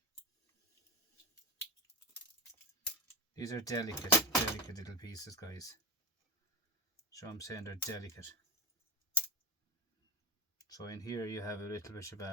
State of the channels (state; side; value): normal; both; correlation 0.20